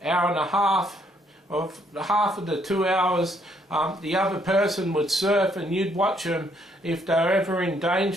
and a half of the 2 hours, the other person would surf, and you'd watch them. If they were ever in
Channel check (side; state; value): both; normal; correlation 0.69